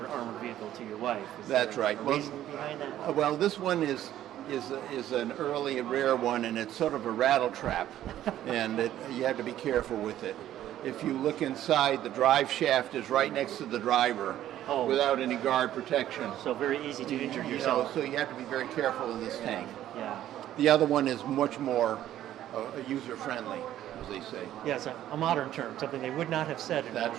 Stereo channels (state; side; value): quieter; left; 12.4 dB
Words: armored vehicle to your wife. Is That's there right. a reason behind that? Well, this one is an early and rare one, and it's sort of a rattle trap, and you have to be careful with it. If you look inside, the drive shaft is right next to the driver without any guard protection. So very easy to injure yourself. So you have to be very careful in this tank. Yeah. The other one is much more user-friendly, as they say. Yes, a modern term, something they would not have said in That's